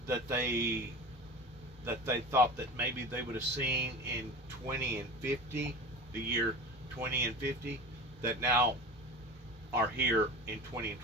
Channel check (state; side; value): normal; both; correlation 0.32